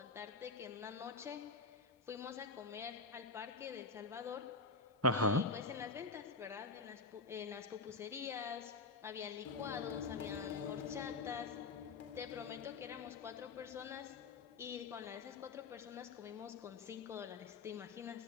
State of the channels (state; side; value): quieter; right; 3.7 dB